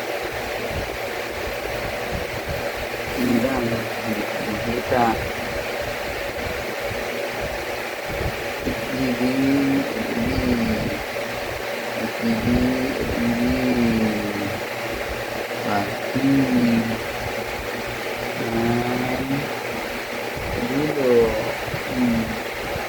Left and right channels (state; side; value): identical; both; correlation 1.00